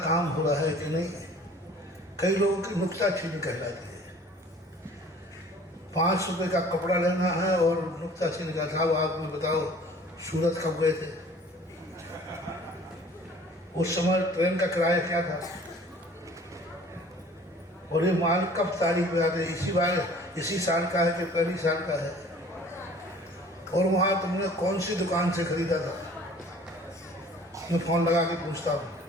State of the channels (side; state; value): both; normal; correlation 0.50